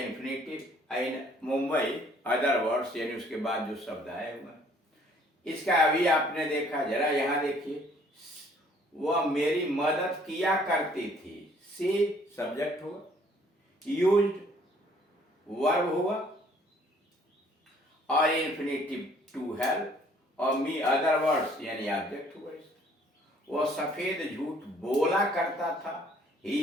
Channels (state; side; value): normal; both; correlation 0.60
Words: इन मुंबई अदर वर्ड्स यानी उसके बाद जो शब्द आए हुए। इसका अभी आपने देखा, जरा यहां देखिए, वह मेरी मदद किया करती थी। सी सब्जेक्ट हुआ, यूज्ड वर्ब हुआ और इन्फिनिटिव टू हेल्प और मी अदर वर्ड्स यानी ऑब्जेक्ट हुआ। वह सफेद झूठ बोला करता था। ही